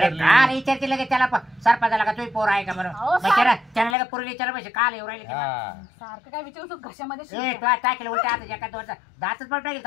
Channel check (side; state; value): right; drops out; at 4.0 s